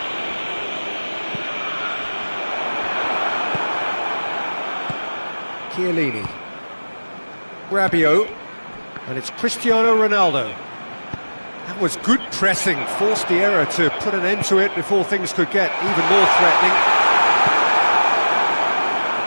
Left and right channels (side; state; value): both; inverted; correlation -1.00